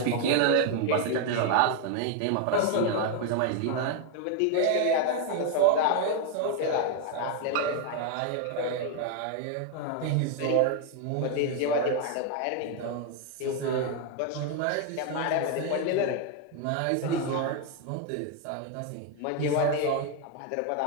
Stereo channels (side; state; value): both; different; correlation 0.01